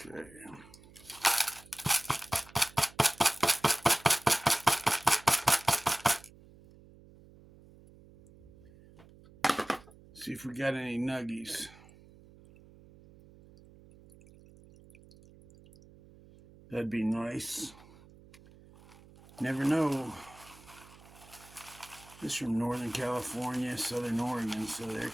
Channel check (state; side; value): noise; right; hum, 23 dB below the sound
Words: Okay. See if we got any nuggies. That'd be nice. Never know. This is from Northern California, Southern Oregon, so there